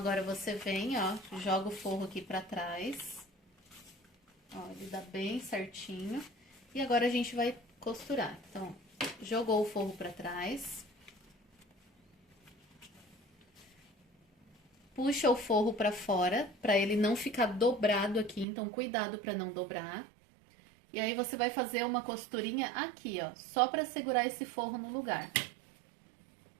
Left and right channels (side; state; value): left; drops out; at 18.4 s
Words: você vem, ó, joga o forro aqui pra trás. Ó, ele dá bem certinho. E agora a gente vai costurar. Então, jogou o forro pra trás. Puxa o forro pra fora, pra ele não ficar dobrado aqui, então cuidado pra não dobrar. E aí, você vai fazer uma costurinha aqui, ó, só pra segurar esse forro no lugar.